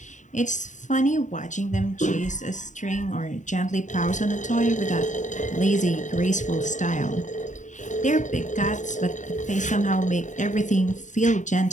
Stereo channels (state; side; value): late; right; 0.36 ms